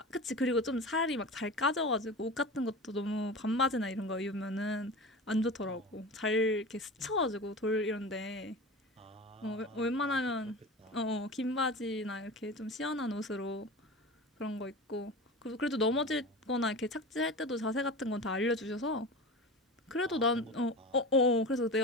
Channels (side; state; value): both; normal; correlation 0.31